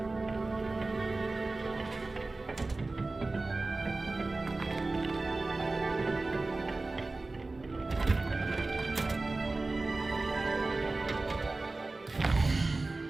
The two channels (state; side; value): quieter; left; 3.3 dB